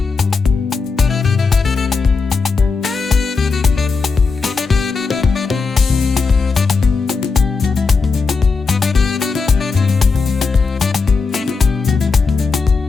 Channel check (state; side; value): quieter; right; 4.5 dB